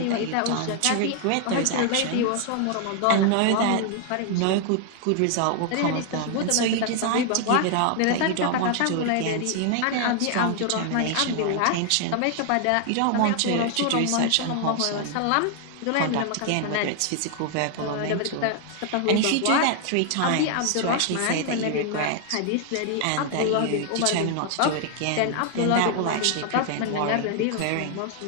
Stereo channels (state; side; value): different; both; correlation 0.00